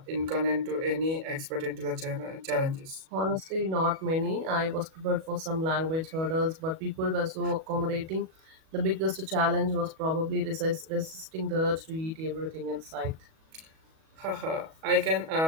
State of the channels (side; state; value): left; late; 37 ms